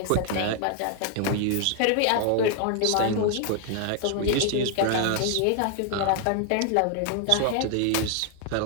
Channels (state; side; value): different; both; correlation 0.00